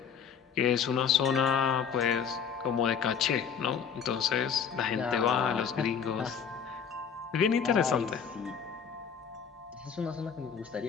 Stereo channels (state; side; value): quieter; right; 7.1 dB